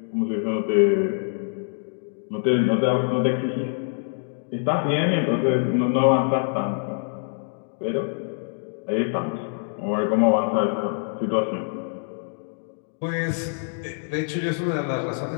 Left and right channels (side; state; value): right; silent; digital silence